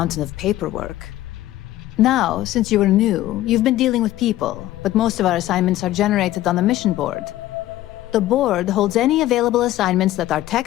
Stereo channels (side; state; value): right; quieter; 14.8 dB